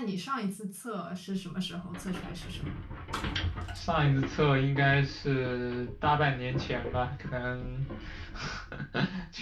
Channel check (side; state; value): both; identical; correlation 1.00